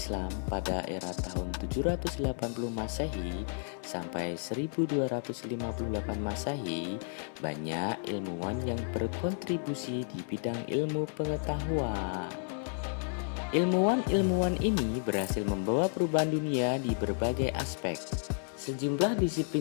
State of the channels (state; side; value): silent; right; 56 dB below the other